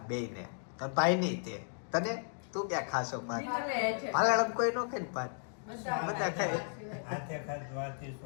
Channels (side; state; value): right; silent; digital silence